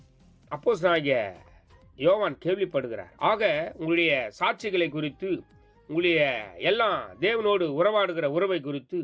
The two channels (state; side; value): identical; both; correlation 1.00